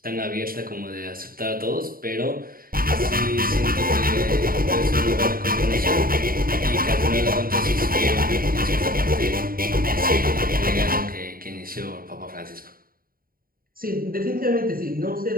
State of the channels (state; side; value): late; left; 0.42 ms